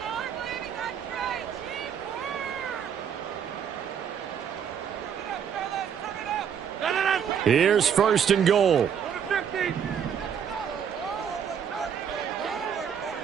Here's 1st and goal.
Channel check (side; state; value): left; quieter; 8.0 dB